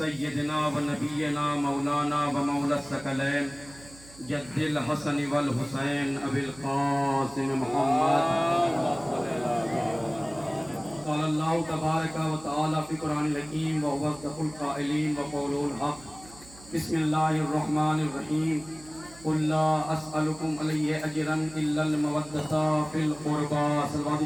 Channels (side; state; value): right; noise; hum, 21 dB below the sound